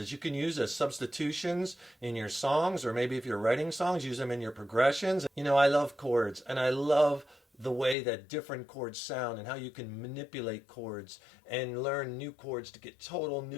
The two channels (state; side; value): drops out; right; at 8.0 s